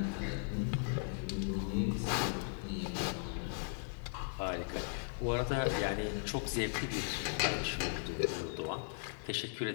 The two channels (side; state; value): right; silent; digital silence